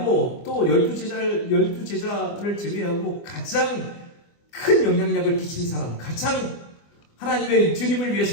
또 12제자를 제외하고 가장 큰 영향력을 끼친 사람, 가장 하나님의 주님을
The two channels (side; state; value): right; late; 24 ms